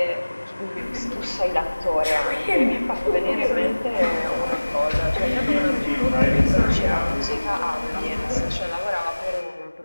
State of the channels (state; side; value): inverted; both; correlation -1.00